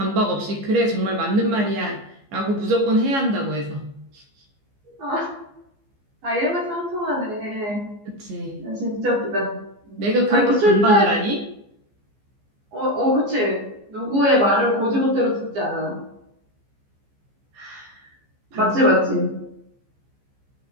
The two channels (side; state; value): left; late; 15 ms